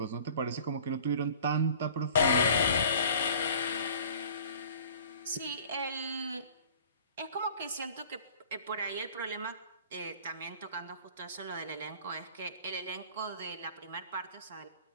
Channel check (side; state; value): both; inverted; correlation -0.47